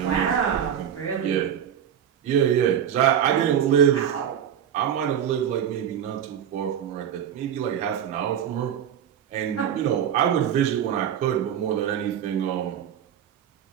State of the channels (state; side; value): quieter; left; 9.3 dB